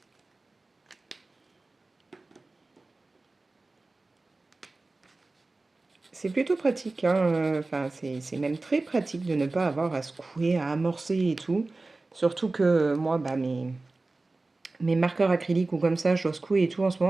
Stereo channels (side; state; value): left; quieter; 3.3 dB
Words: C'est plutôt pratique, hein, enfin, c'est même très pratique de ne pas avoir à secouer, à amorcer et tout. Surtout que moi, bah, mes marqueurs acryliques ou comme ça, je dois secouer et tout en ce